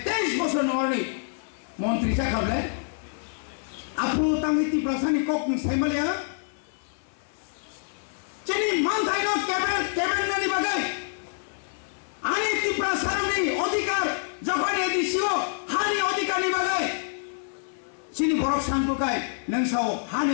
23 বছর নরনি মন্ত্রী চাকাবলে আপু তামিতি প্রশাসনিক কক সাইমালিয়া চিনি মানথাই ন ক্যাবিনেটনি বাগাই আনি ত্রিপুরা সারনি অধিকার যখন এদিছিও হানি অধিকারনি বাগাই চিনি বরক সানপুকাই নংসাও হানি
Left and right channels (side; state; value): right; silent; 60 dB below the other